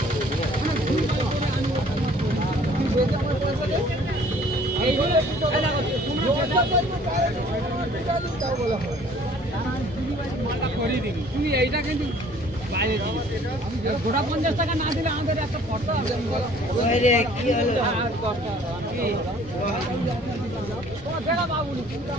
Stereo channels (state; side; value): normal; both; correlation 0.55